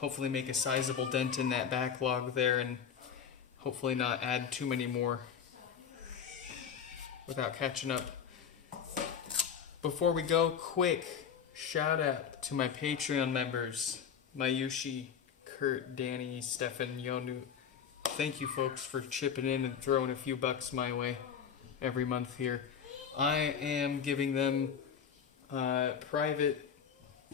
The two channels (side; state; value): right; quieter; 7.5 dB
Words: make a sizable dent in that backlog there, and hopefully not add too many more without catching up. Before we go, quick shout out to my Patreon members, Mayushi, Kurt, Danny, Stefan, Yonu. Thank you folks for chipping in and throwing a few bucks my way every month here. I am giving them private